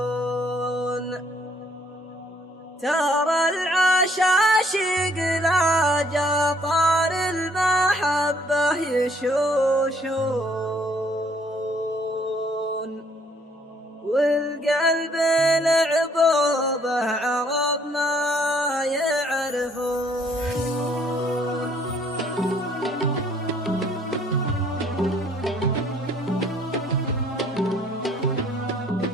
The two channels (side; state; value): both; normal; correlation 0.63